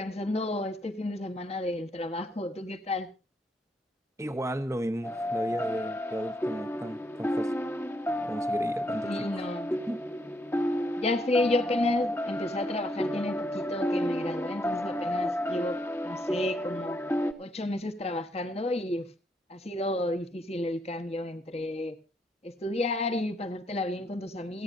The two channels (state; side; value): normal; both; correlation 0.75